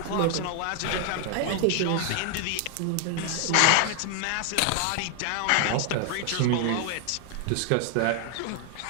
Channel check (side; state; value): both; different; correlation 0.00